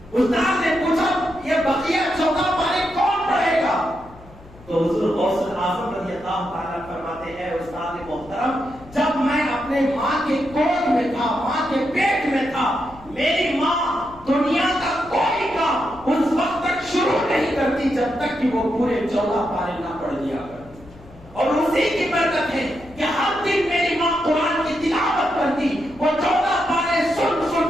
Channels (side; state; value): left; noise; hum, 22 dB below the sound